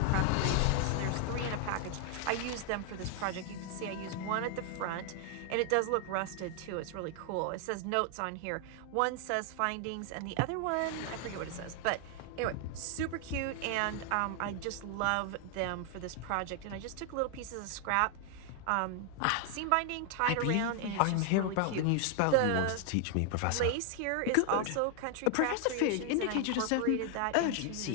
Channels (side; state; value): both; different; correlation 0.00